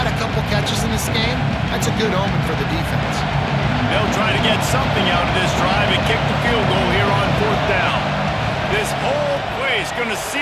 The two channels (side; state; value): both; identical; correlation 1.00